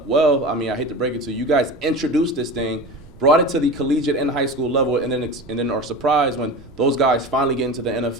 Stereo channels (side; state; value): right; noise; rumble, 23 dB below the sound